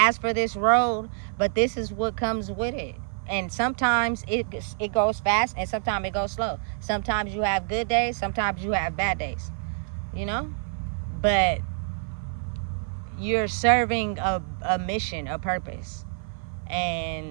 for this road, but this is what comes with it. And sometimes it goes fast, and sometimes it goes slow. Sometimes you have good days, sometimes you have bad days, you know. But you're serving a mission, a purpose.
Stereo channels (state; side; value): silent; left; 55 dB below the other